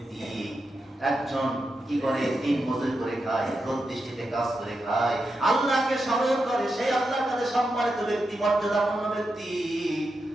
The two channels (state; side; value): normal; both; correlation 0.87